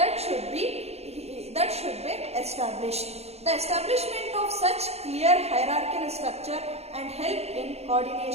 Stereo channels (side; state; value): left; late; 0.31 ms